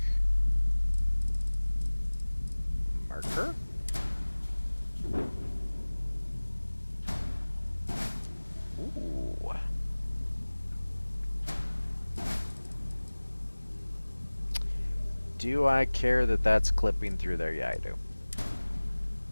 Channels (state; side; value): inverted; both; correlation -1.00